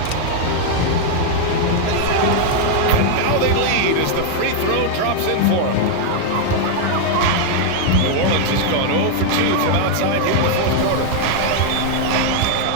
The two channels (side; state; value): both; different; correlation 0.00